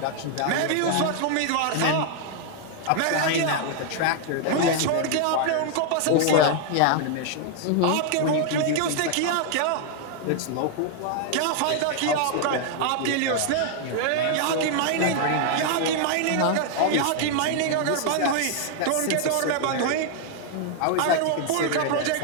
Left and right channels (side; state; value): both; different; correlation 0.00